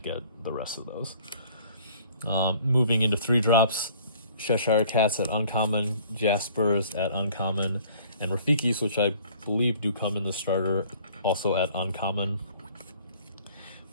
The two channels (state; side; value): inverted; both; correlation -0.54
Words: get the rest of those. Moving into 3-drops, Cheshire Cats at uncommon, Jaspers at uncommon, and Rafikis, which I believe do come in the starter, also at uncommon.